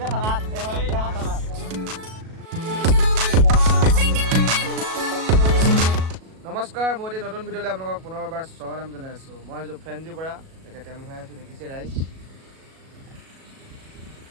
থানাত নমস্কাৰ মই এতিয়া নতুন ভিডিঅ'লৈ আপোনালোকক পুনৰবাৰ স্বাগতম জনাই আছোঁ মই আছোঁ ফ্ৰেঞ্চি পৰা এতিয়া তেল ভৰাই আছোঁ দেখিছে ৰাইজ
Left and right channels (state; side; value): late; left; 37 ms